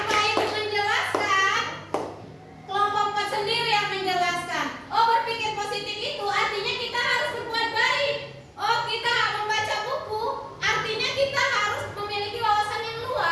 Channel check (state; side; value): identical; both; correlation 1.00